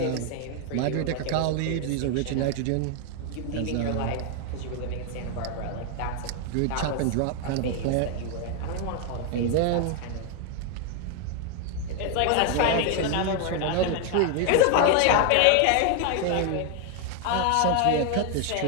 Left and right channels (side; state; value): both; different; correlation 0.00